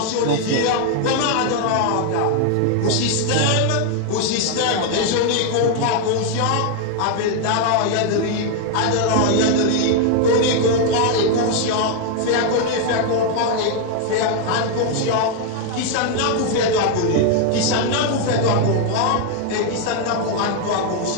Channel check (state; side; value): different; both; correlation 0.00